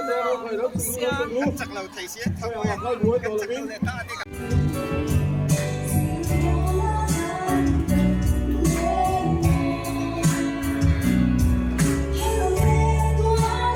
đầu chắc là thầy sẽ thằng ngồi chắc là ta đi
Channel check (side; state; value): both; identical; correlation 1.00